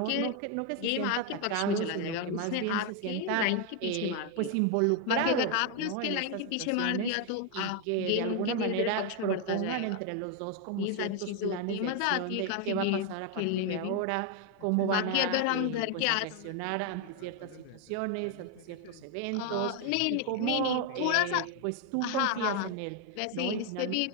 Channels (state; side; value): different; both; correlation 0.01